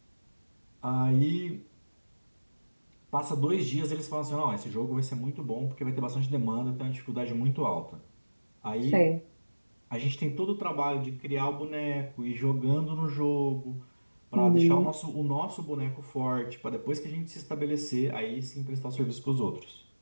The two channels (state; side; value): inverted; both; correlation -1.00